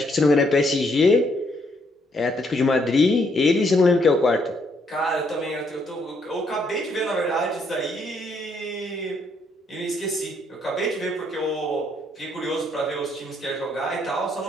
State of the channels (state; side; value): normal; both; correlation 0.72